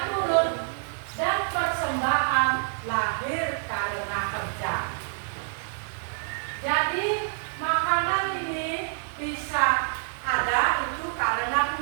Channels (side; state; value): left; silent; digital silence